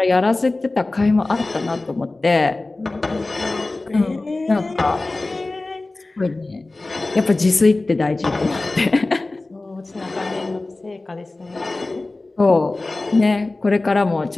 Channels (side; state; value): right; quieter; 3.1 dB